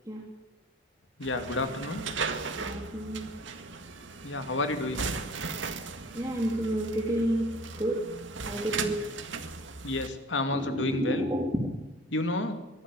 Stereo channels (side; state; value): both; normal; correlation 0.45